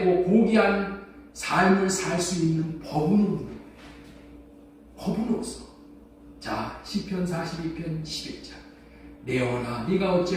고귀한 삶을 살 수 있는 법은 없는 거예요. 법은 없어. 자, 시편 42편 11절. 내 영혼아, 네가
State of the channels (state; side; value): identical; both; correlation 1.00